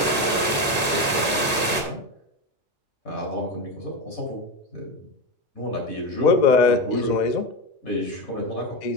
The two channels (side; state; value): both; normal; correlation 0.16